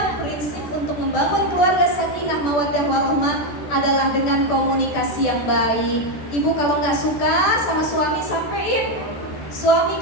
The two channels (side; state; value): right; late; 14 ms